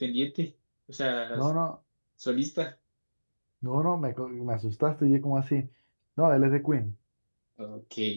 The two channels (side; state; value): both; inverted; correlation -1.00